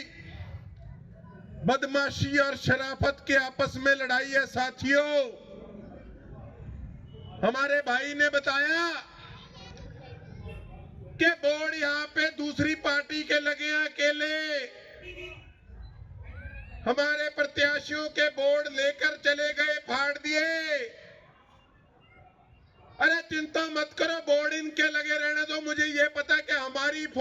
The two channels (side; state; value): both; identical; correlation 1.00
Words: बदमाशी और शराफत के आपस में लड़ाई है। साथियों, हमारे भाई ने बताया कि बोर्ड यहाँ पे दूसरी पार्टी के लगे हैं अकेले, हमारे प्रत्याशियों के बोर्ड लेकर चले गए, फाड़ दिए। अरे चिंता मत करो, बोर्ड इनके लगे रहने दो। मुझे ये पता कि हमारी